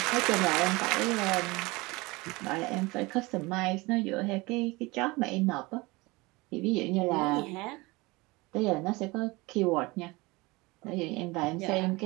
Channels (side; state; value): left; quieter; 23.4 dB